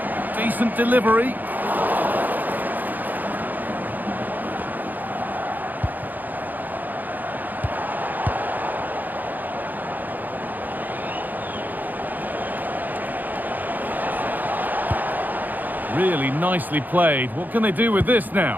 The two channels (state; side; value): late; left; 0.085 ms